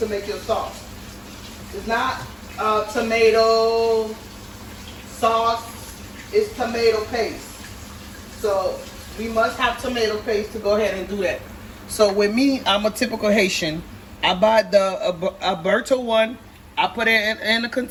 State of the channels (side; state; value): both; identical; correlation 1.00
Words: make your sauce. It's not tomato sauce, it's tomato paste. So we must have tomato paste to go ahead and do that. So with me, I'm a typical Haitian. I buy the Alberto one, I put it in a